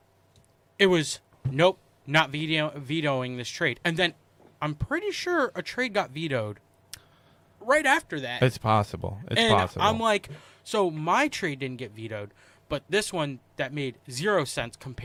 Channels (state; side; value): identical; both; correlation 1.00